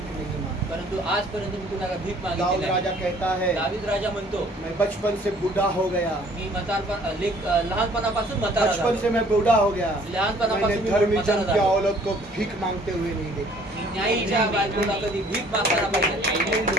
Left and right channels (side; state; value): both; normal; correlation 0.57